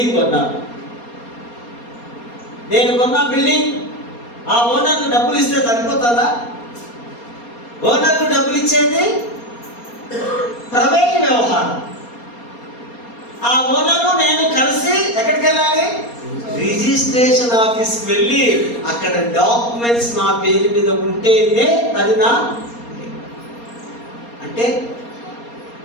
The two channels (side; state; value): right; late; 4.3 ms